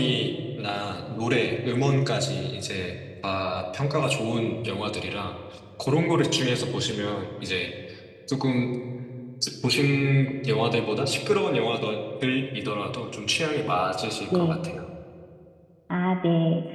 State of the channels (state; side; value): identical; both; correlation 1.00